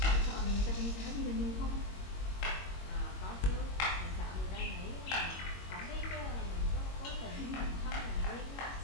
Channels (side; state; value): right; late; 21 ms